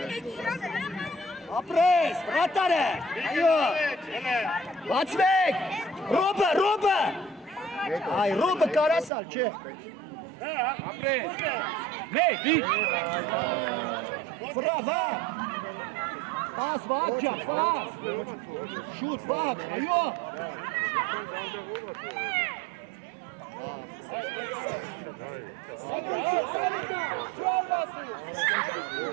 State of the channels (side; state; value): left; drops out; at 9.1 s